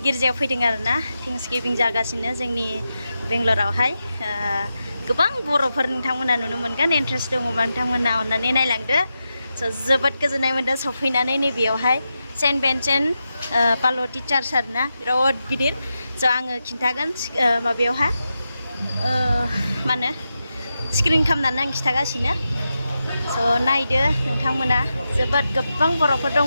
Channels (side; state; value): both; inverted; correlation -0.89